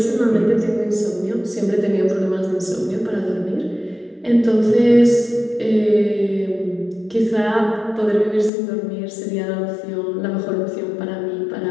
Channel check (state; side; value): drops out; right; at 8.5 s